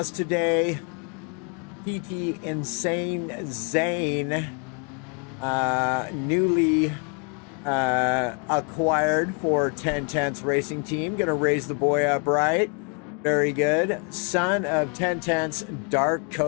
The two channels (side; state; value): right; quieter; 36.0 dB